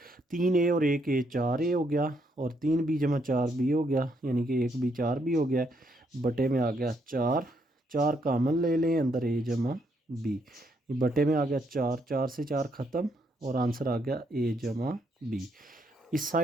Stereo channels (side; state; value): both; normal; correlation 0.74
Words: 3 ए और 1 ए 4 ए हो गया, और 3 बी जमा 4 बी हो गया, यानी कि 1 बी 4 बी हो गया, बटे में आ गया 4। 4 कामन ले लें, अंदर ए जमा बी, ये बटे में आ गया 4, 4 से 4 ख़त्म, और आंसर आ गया ए जमा बी। इस